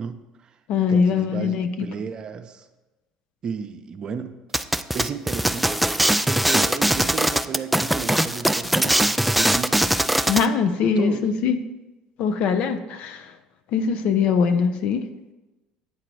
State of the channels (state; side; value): normal; both; correlation 0.77